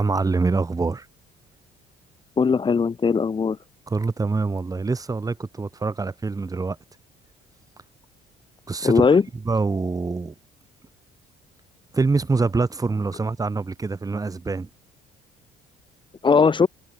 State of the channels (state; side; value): normal; both; correlation 0.77